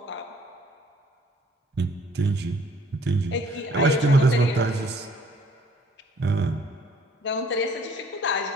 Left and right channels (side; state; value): both; normal; correlation 0.59